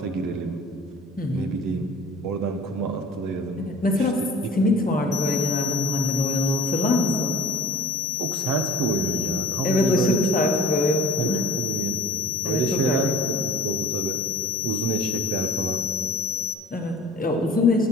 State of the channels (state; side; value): normal; both; correlation 0.45